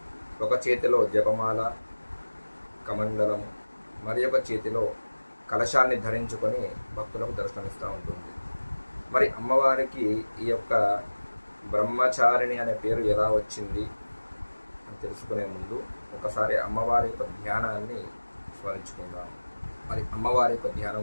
ఒక చేతిలో జపమాల కమండలము మరి ఒక చేతిలో కలశాన్ని ధరించుకొని భక్తులకు దర్శనమిస్తూ ఉంటుంది. మరి అమ్మవారికి ఈ యొక్క బ్రహ్మచారిణి అనే పేరు ఎలా వచ్చింది అని తెలుసుకునే ముందు ఒకసారి అమ్మవారి యొక్క ధ్యానాన్ని స్మరించుకుందాం. మరి అమ్మవారి యొక్క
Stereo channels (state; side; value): inverted; both; correlation -1.00